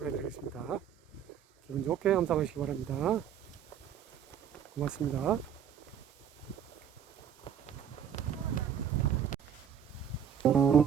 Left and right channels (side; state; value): left; quieter; 8.6 dB